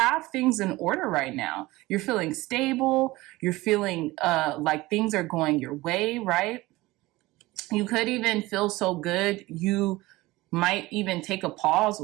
things in order right now. You're feeling stable. You're feeling like things are going your way, right? You could even feel so good you might even take a pause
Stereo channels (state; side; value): quieter; left; 19.8 dB